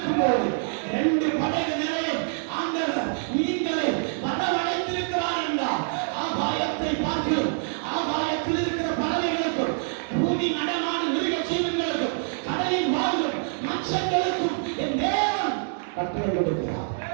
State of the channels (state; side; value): silent; left; 61 dB below the other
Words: போது 2 படகு நிறைய ஆண்டவர் மீன்களை வரவழைத்திருக்கிறார் என்றார். ஆகாயத்தை பார்த்து ஆகாயத்தில் இருக்கிற பறவைகளுக்கும் பூமி நடமாடும் மிருக ஜீவன்களுக்கும் கடலில் வாழும் மச்சங்களுக்கும் என் தேவன் கட்டளை கொடுக்கிறார்.